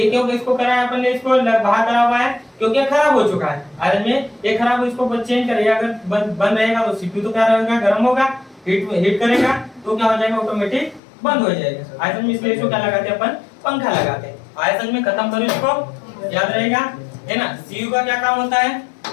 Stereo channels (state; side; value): drops out; right; at 11.0 s